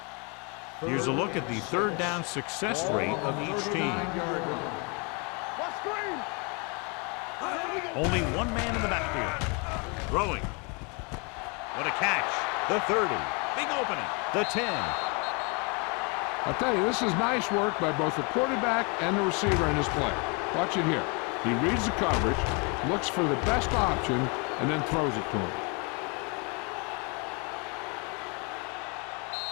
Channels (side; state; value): right; quieter; 32.6 dB